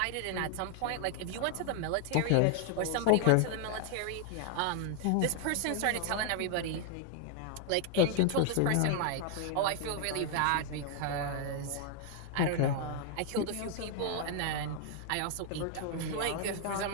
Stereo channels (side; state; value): both; different; correlation 0.00